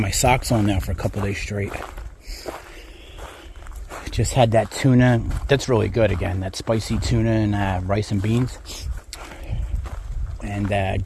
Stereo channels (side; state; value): both; identical; correlation 1.00